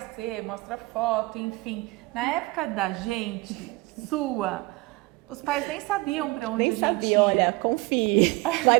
ser, mostra foto, enfim. Na época da gente, os pais nem sabiam para onde a gente ia. Olha, confie, vai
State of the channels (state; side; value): quieter; left; 23.0 dB